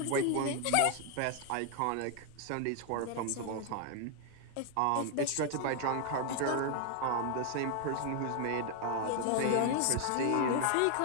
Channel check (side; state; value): both; different; correlation 0.01